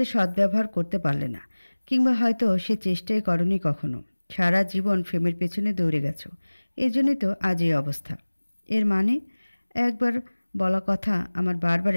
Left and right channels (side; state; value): both; inverted; correlation -1.00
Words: সদ্ব্যবহার করতে পারলে না, কিংবা হয়তো সে চেষ্টাই করনি কখনো। সারা জীবন ফেমের পেছনে দৌড়ে গেছো, এই জন্যই তো আজ এই অবস্থা। এর মানে? একবার বলা কথা আমার বারবার